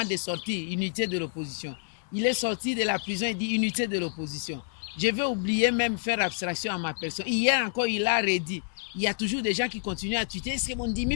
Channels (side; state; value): right; silent; digital silence